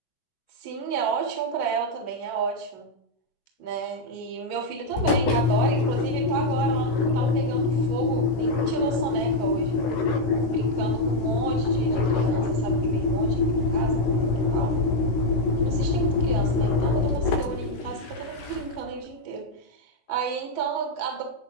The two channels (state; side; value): late; right; 16 ms